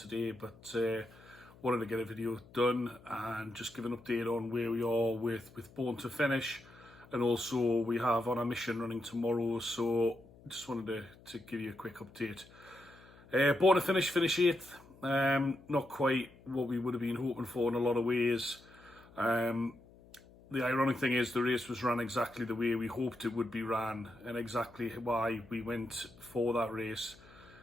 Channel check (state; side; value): noise; left; hum, 23 dB below the sound